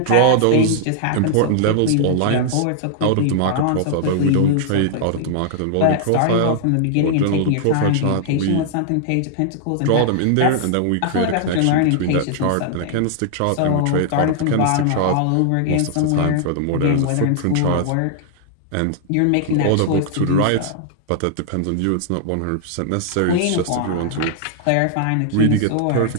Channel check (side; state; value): both; different; correlation -0.01